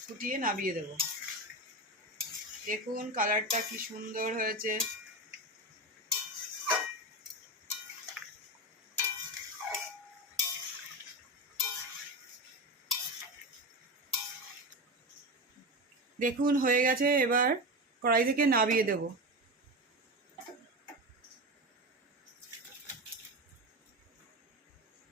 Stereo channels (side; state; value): both; normal; correlation 0.20